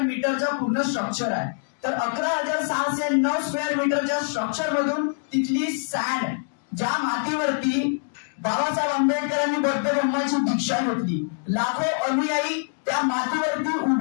पूर्ण स्ट्रक्चर आहे. तर 11,609 स्क्वेअर मीटरच्या स्ट्रक्चर मधून तिथली सँड ज्या मातीवरती बाबासाहेब आंबेडकरांनी बौद्ध धर्माची दीक्षा घेतली, लाखो अनुयायी त्या मातीवरती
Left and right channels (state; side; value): silent; right; digital silence